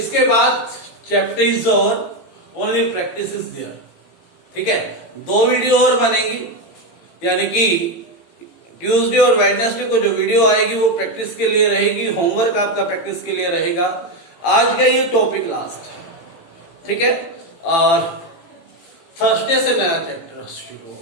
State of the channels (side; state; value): right; late; 18 ms